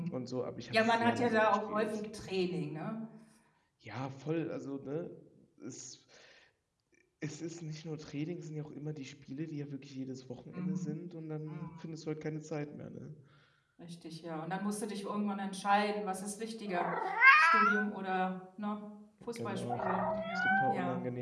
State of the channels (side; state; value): both; identical; correlation 1.00